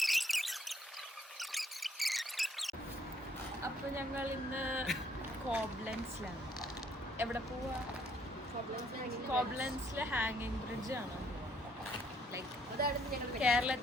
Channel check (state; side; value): normal; both; correlation 0.67